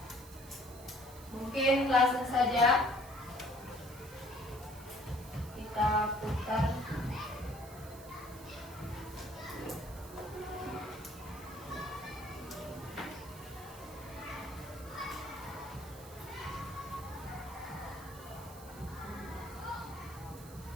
Mungkin langsung saja kita putar.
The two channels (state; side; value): noise; right; hiss, 18 dB below the sound